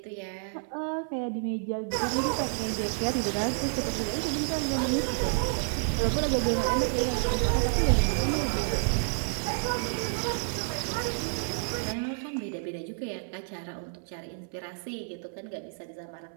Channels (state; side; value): silent; left; 58 dB below the other